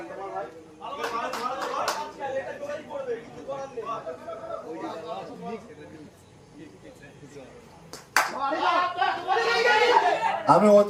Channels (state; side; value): identical; both; correlation 1.00